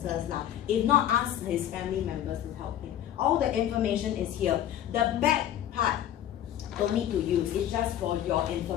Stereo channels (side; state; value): right; quieter; 11.4 dB